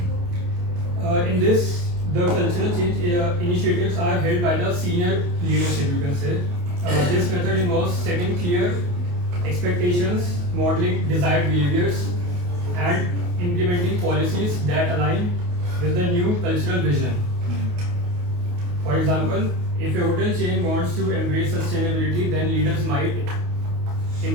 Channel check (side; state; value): left; late; 28 ms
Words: in this the cultural change initiatives are held by the senior leadership, you can say, This method involves setting clear expectations, modeling desired behaviors, and implementing policies that align with the new cultural vision. For example, if a hotel chain wants to embrace sustainability, then leaders might